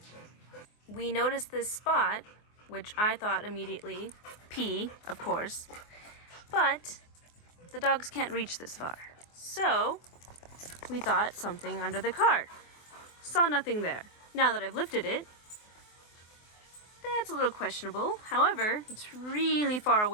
We noticed this spot, which I thought immediately, pee, of course, but the dogs can't reach this far. So we thought something under the car. Saw nothing there. Now that I've lifted it, that's a little questionable. However, it's really far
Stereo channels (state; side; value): late; right; 24 ms